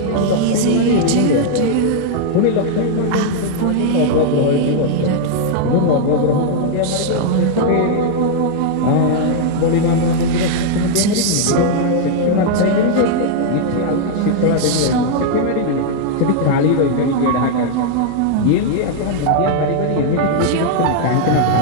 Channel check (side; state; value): both; different; correlation -0.01